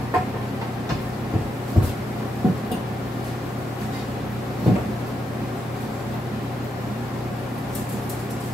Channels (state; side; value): normal; both; correlation 0.83